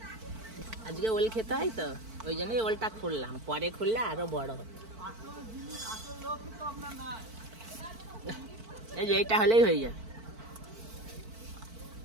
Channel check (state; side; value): late; left; 4.5 ms